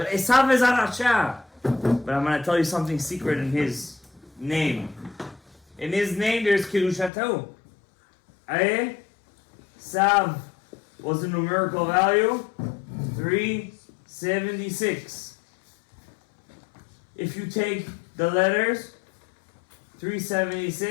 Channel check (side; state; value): right; drops out; at 7.1 s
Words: Esau is a Rasha. But I'm going to tell you something secret in his name. In his name, there's Kiddushato. Esau was the numerical value 376. If you take the letters